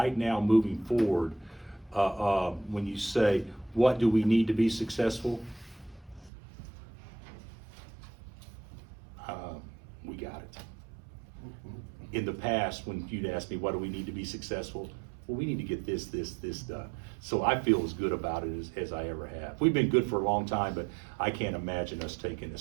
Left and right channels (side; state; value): left; drops out; at 6.3 s